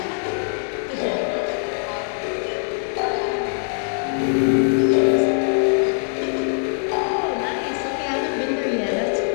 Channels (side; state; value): right; silent; 64 dB below the other